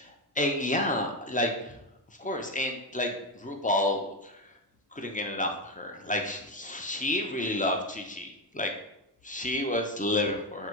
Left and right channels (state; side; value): normal; both; correlation 0.12